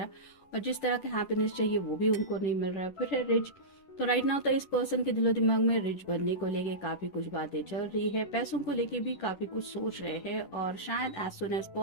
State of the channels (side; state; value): right; late; 10 ms